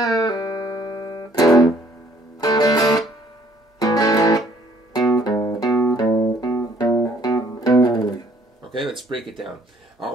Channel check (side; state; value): both; normal; correlation 0.61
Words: Okay, let's break it down.